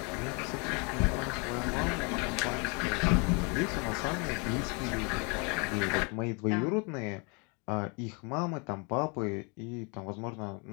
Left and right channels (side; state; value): right; quieter; 32.8 dB